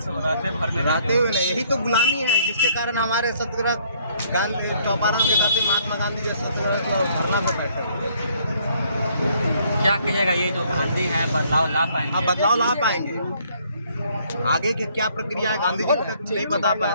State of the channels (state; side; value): inverted; both; correlation -0.64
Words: रहते भर में रहते हुए नहीं, यही तो गुलामी है जिसके कारण हमारे सत्याग्रह गांधी चौपारण के खाते महात्मा गांधी जैसे धरना पर बैठे। क्या कहिएगा, ये जो गांधी है बदलाव ला पाएंगे? आप बदलाव ला पाएंगे? आगे की क्या प्रक्रिया है गांधी जी तक नहीं बता पाए